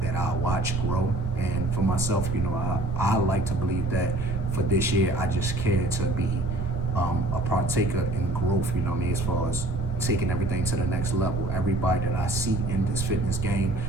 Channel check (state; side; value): noise; right; rumble, 6 dB below the sound